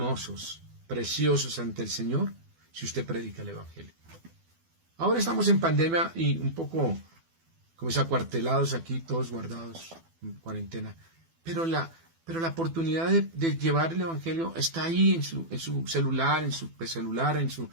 preciosos ante el Señor, si usted predica el evangelio. Ahora estamos en pandemia y un poco como acuartelados aquí, todos guardados en cuarentena, pero la oportunidad de llevar el evangelio está ahí en su celular, en su celular, en su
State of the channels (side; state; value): left; late; 12 ms